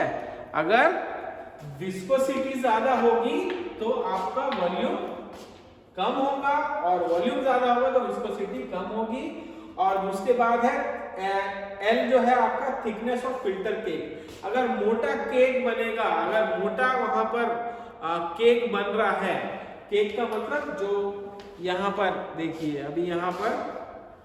अगर विस्कोसिटी ज्यादा होगी तो आपका वॉल्यूम कम होगा, और वॉल्यूम ज्यादा होगा तो विस्कोसिटी कम होगी। और उसके बाद है एल जो है आपका थिकनेस ऑफ फिल्टर केक। अगर मोटा केक बनेगा, अगर मोटा वहां पर केक बन रहा है, केक का मतलब जो यहाँ पर देखिए, अभी यहाँ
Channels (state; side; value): identical; both; correlation 1.00